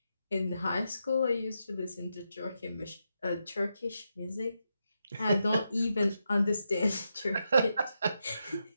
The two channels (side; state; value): both; inverted; correlation -0.85